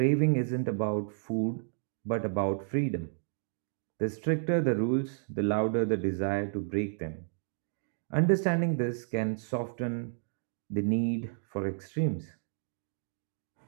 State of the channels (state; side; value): silent; left; digital silence